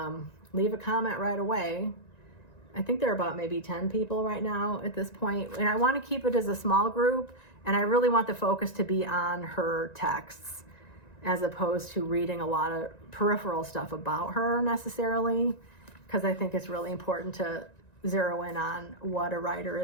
leave a comment right away. I think there are about maybe 10 people right now at this point. And I want to keep it as a small group, and I really want the focus to be on her texts as opposed to reading a lot of peripheral stuff about her necessarily, because I think it's really important to zero in on what a writer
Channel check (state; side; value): late; right; 1.9 ms